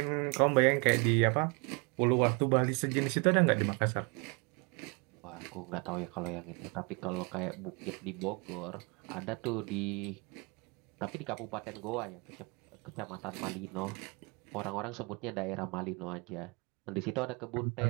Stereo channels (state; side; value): quieter; left; 30.7 dB